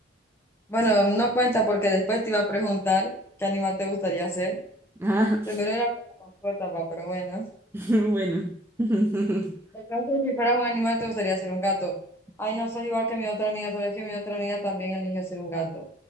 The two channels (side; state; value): both; normal; correlation 0.52